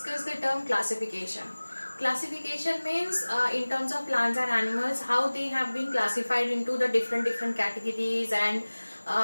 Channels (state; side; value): inverted; both; correlation -1.00